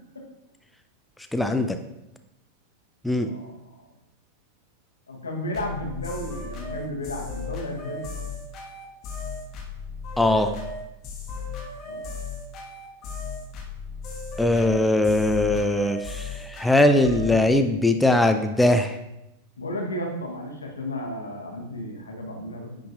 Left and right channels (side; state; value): both; normal; correlation 0.63